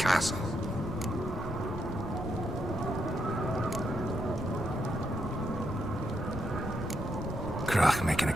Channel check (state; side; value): noise; right; rumble, 9 dB below the sound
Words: Krach make an